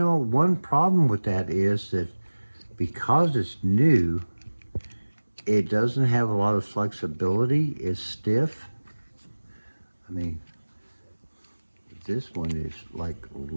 one problem with that is that because it's new, it doesn't have a lot of flexibility. It's stiff. I mean, this one is like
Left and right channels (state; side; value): inverted; both; correlation -1.00